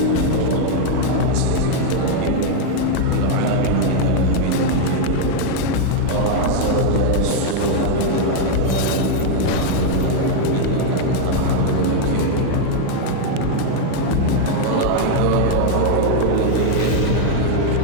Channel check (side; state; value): both; different; correlation 0.00